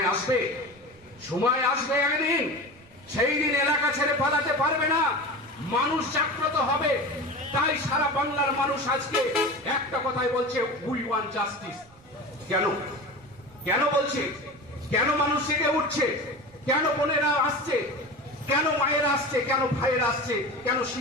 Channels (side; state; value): right; noise; rumble, 27 dB below the sound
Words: সময় আসবে একদিন, সেই দিন এলাকা ছেড়ে পালাতে পারবে না, মানুষ জাগ্রত হবে। তাই সারা বাংলার মানুষ আজকে একটা কথাই বলছে, উই ওয়ান্ট জাস্টিস। কেন বলছে? কেন মানুষ জেগে উঠছে? কেন বোনেরা আসছে? কেন মায়েরা আসছে? কেন ভাইয়েরা আসছে? কেন